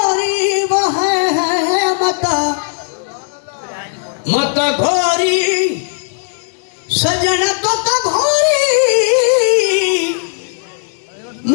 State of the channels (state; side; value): silent; right; digital silence